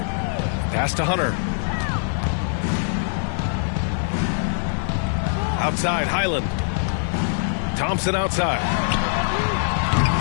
Pass to Hunter. Outside, Highland. Thompson outside.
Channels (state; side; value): silent; right; digital silence